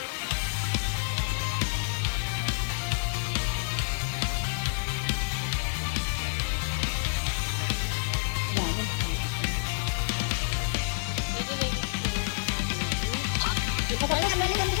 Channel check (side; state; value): right; silent; digital silence